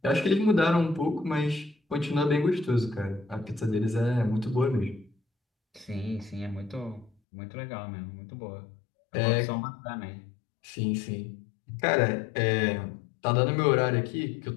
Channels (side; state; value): right; drops out; at 7.1 s